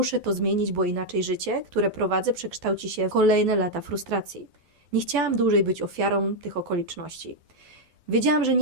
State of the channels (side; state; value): left; late; 12 ms